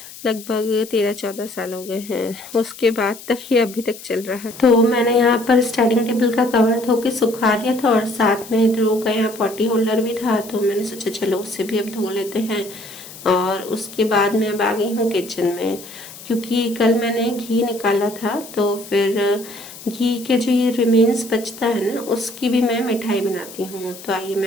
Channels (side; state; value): left; noise; hiss, 16 dB below the sound